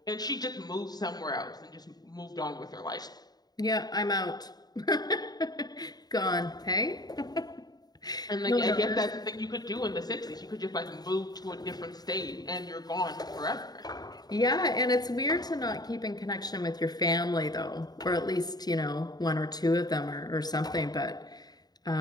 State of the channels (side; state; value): right; late; 0.19 ms